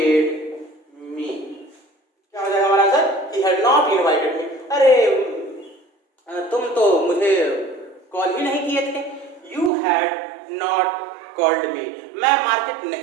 me. क्या हो जाएगा हमारा answer, he had not invited me. अरे तुम तो मुझे कॉल ही नहीं किए थे, you had not called me. मैं मार्केट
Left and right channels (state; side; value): drops out; left; at 9.7 s